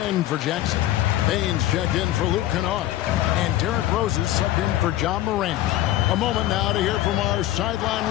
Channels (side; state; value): right; quieter; 14.0 dB